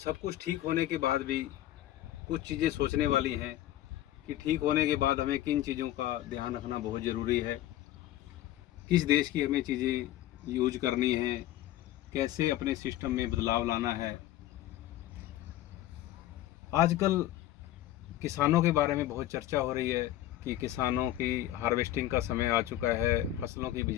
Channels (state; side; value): quieter; right; 13.9 dB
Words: कुछ ठीक होने के बाद भी कुछ चीज़ें सोचने वाली हैं कि ठीक होने के बाद हमें किन चीज़ों का ध्यान रखना बहुत ज़रूरी है, किस देश की हमें चीज़ें यूज करनी है, कैसे अपने सिस्टम में बदलाव लाना है। आजकल किसानों के बारे में बहुत चर्चा हो रही है कि किसानों की हार्वेस्टिंग का समय आ चुका है, फसलों की